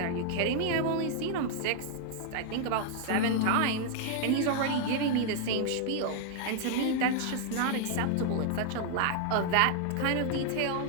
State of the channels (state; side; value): different; both; correlation 0.00